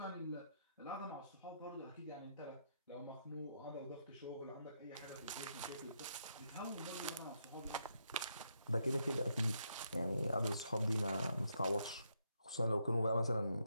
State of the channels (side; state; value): both; inverted; correlation -0.79